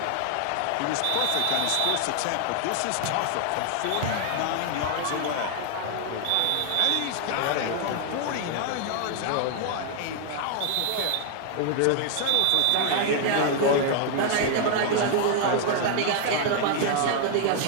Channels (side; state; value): both; different; correlation 0.00